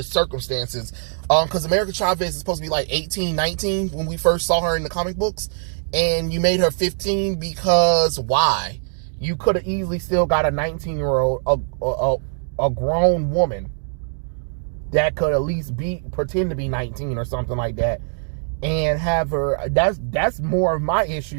circumstances. Because America Chavez is supposed to be like 18, 19 when we first saw her in the comic books, and you made her 15 because why? You could have easily still got a 19-year-old, a grown woman that could at least pretend to be 19 or something like that, and have her. That's more of my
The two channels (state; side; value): silent; left; digital silence